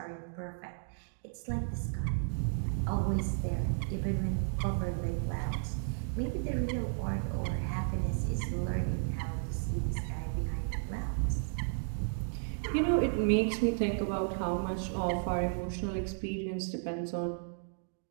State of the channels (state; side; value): silent; left; digital silence